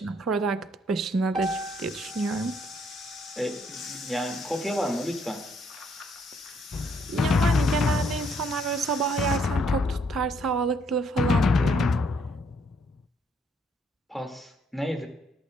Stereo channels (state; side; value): normal; both; correlation 0.69